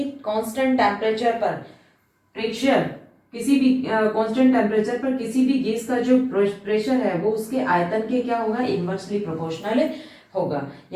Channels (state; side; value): identical; both; correlation 1.00